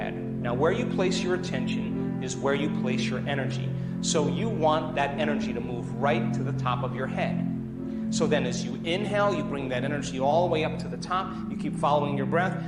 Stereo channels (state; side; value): identical; both; correlation 1.00